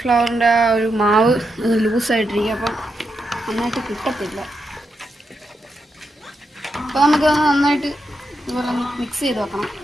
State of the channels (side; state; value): both; normal; correlation 0.84